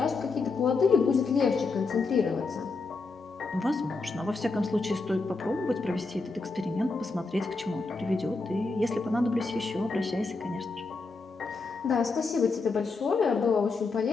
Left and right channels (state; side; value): quieter; right; 3.9 dB